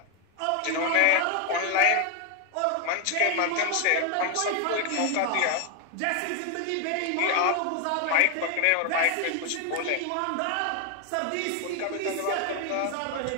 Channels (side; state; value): both; different; correlation 0.01